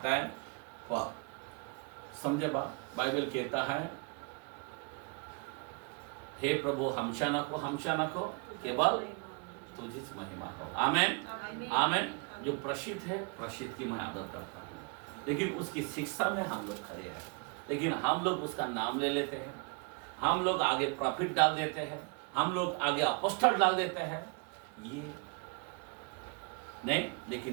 है, पर समझे बाइबल कहता है हे प्रभु हमशा न को केवल तुझी महिमा हो। आमेन आमेन। जो प्रसिद्ध है, प्रसिद्ध की मैं आदर करता हूँ, लेकिन उसकी शिक्षा में हम लोग खड़े हैं। लेकिन हम लोग उसका नाम ले लेते हैं, हम लोग आगे प्रॉफिट डाल देते हैं, हम लोग आगे अपॉस्टल डाल देते हैं। ये नहीं,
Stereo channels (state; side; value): quieter; left; 33.8 dB